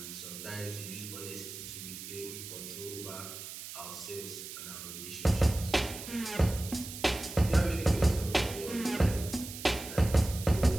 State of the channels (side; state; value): right; noise; hiss, 10 dB below the sound